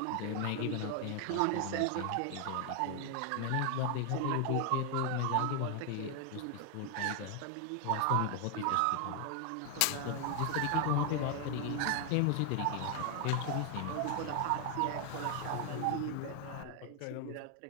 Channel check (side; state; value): both; different; correlation 0.00